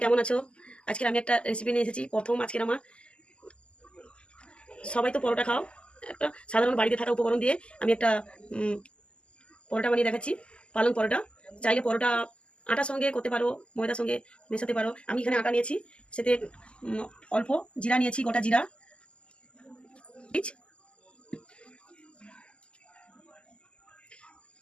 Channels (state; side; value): late; right; 0.052 ms